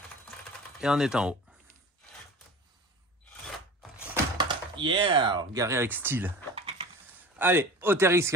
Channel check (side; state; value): both; normal; correlation 0.37